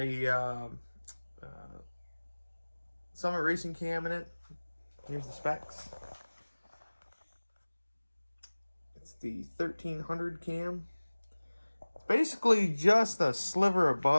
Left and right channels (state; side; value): inverted; both; correlation -1.00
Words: Summit Racing cam in it. Here's the specs. It's the 1300 cam. It's basically just a sliver